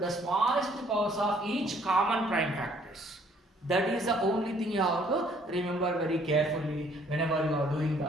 smallest powers of each common prime factors. That is the only thing you have to remember very carefully whenever you are doing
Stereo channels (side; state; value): both; normal; correlation 0.62